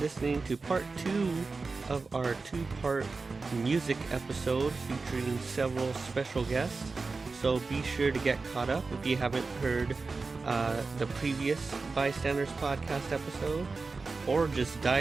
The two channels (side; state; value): left; quieter; 4.1 dB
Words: to part 2 of our 2-part music episode featuring several special guests. So be sure to get caught up if you haven't heard the previous Bystanders Podcast episode, or just